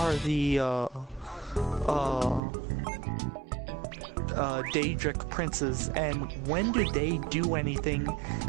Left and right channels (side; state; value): left; drops out; at 2.4 s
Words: the, Daedric princes, and when do they do anything